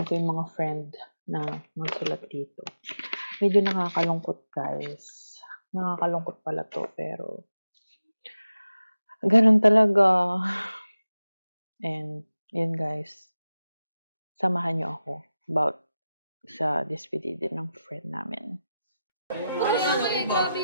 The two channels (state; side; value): inverted; both; correlation -0.92